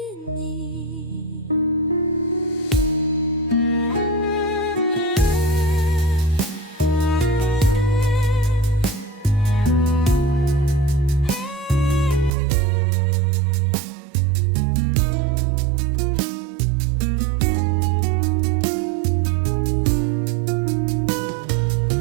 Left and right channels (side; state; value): left; drops out; at 12.3 s